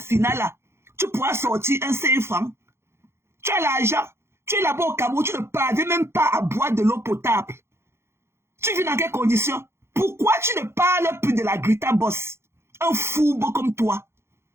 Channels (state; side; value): late; left; 0.12 ms